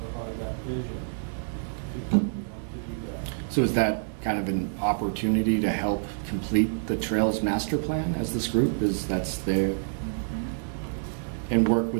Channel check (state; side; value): silent; left; 60 dB below the other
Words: provide that vision to do that. So is that kind of an opportunity to help complete the Trails Master Plan as this group? That's there, and work